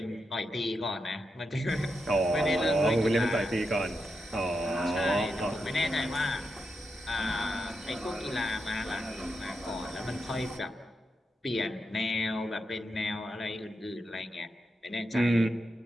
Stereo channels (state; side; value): normal; both; correlation 0.86